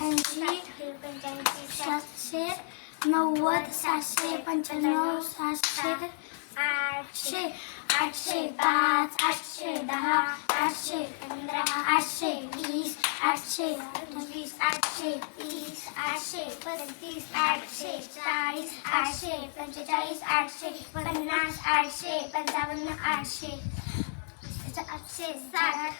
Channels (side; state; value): right; silent; digital silence